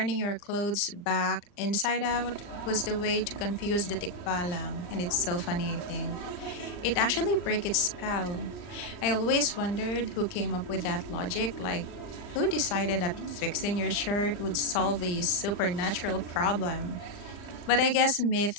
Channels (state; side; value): late; right; 39 ms